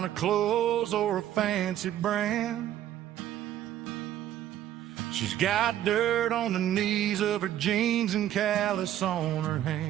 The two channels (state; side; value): quieter; left; 12.1 dB